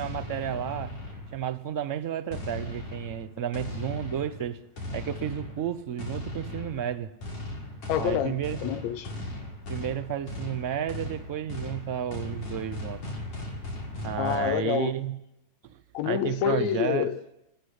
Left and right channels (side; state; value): right; late; 9.0 ms